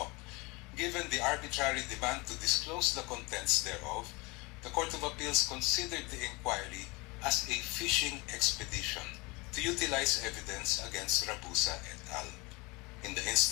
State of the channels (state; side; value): quieter; right; 25.8 dB